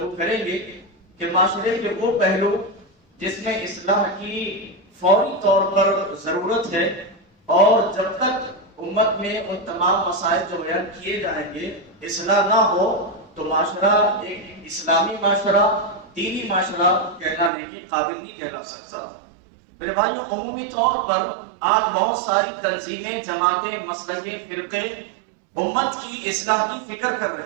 کریں گے کہ معاشرے کے وہ پہلو جس میں اصلاح کی فوری طور پر ضرورت ہے، اور جب تک امت میں ان تمام مسائل جو بیان کیے جائیں گے اصلاح نہ ہو تو معاشرہ ایک اسلامی معاشرہ، دینی معاشرہ کہلانے کے قابل نہیں کہلا سکتا. میرے بھائیوں، عمومی طور پر آج بہت ساری تنظیمیں، جماعتیں، مسلکیں، فرقے امت کی اصلاح کی فکر کر رہے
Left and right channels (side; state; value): left; drops out; at 17.5 s